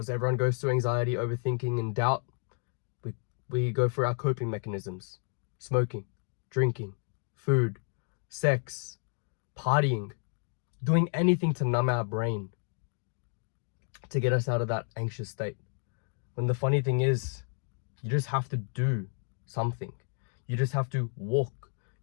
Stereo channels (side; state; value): right; silent; 57 dB below the other